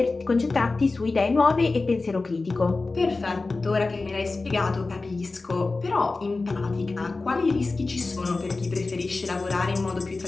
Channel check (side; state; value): right; quieter; 3.6 dB